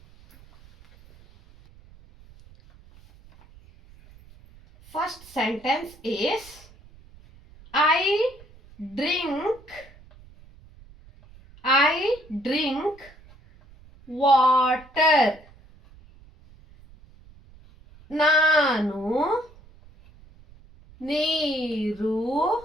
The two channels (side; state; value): right; noise; rumble, 24 dB below the sound